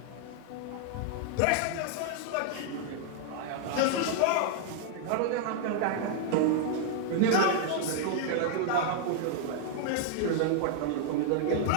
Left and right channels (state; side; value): different; both; correlation 0.00